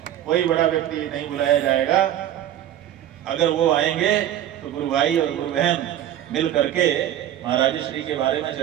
कोई बड़ा व्यक्ति नहीं बुलाया जाएगा। अगर वो आएंगे तो गुरु भाई और गुरु बहन मिल करके महाराज श्री के बारे में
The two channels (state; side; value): quieter; left; 11.6 dB